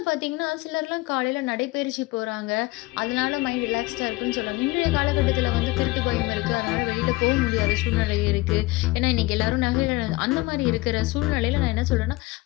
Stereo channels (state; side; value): quieter; right; 21.0 dB